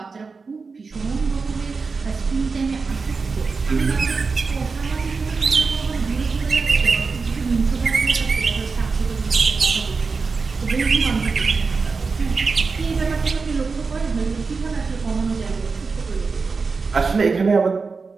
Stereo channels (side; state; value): left; quieter; 4.6 dB